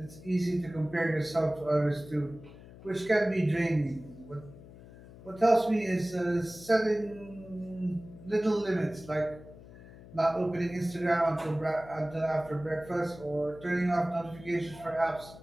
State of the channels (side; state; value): left; noise; hum, 19 dB below the sound